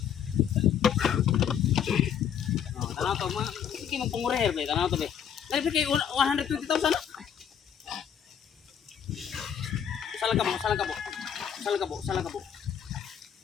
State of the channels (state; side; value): quieter; right; 8.5 dB